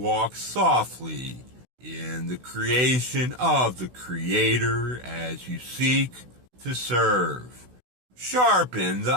softly in the creation of the Creator as you seek to serve. Sharpen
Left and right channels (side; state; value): left; late; 16 ms